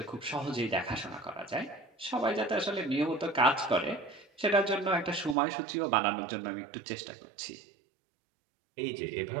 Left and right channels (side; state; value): left; drops out; at 5.4 s